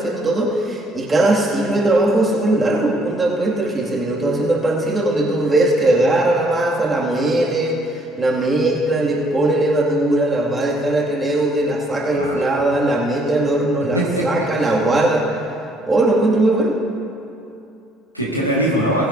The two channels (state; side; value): normal; both; correlation 0.65